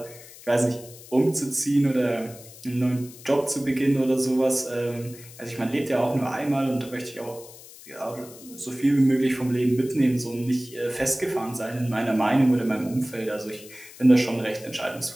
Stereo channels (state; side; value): noise; left; hiss, 18 dB below the sound